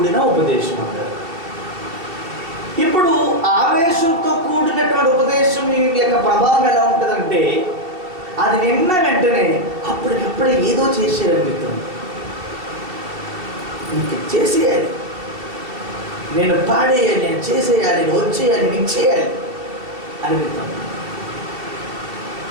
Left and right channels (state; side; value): late; left; 2.7 ms